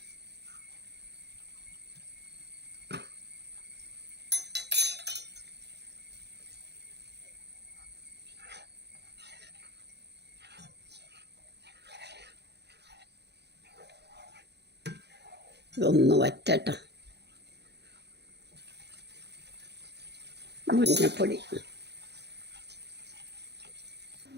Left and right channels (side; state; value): left; late; 0.49 ms